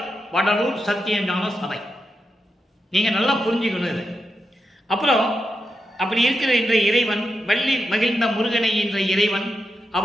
வடலூர் சத்தியஞான சபை. நீங்க நல்லா புரிஞ்சுக்கணும் இது. அப்புறம் அப்படி இருக்கிற என்ற இறைவன், வள்ளி மகிழ்ந்த முருகனை என்ற இறைவன்,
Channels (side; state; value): both; normal; correlation 0.86